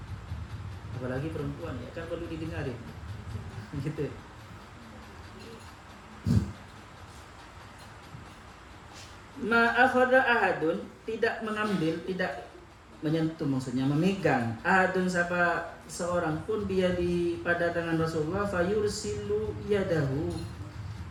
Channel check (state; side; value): identical; both; correlation 1.00